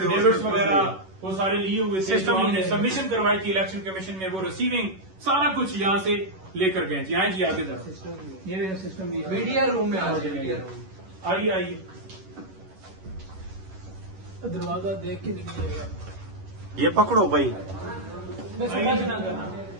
वगैरह वो सारे लिए हुए थे, जो हमने सबमिशन करवाई थी इलेक्शन कमीशन में, वो रिसीविंग सारा कुछ यहाँ से लेकर गए जी। आए जी आगे जरा, ये देखो सिस्टम मीडिया रूम में आ जाइए। आइए आइए। दरवाजा देख के निकलिएगा। ये पकड़ो भाई।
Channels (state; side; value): late; left; 11 ms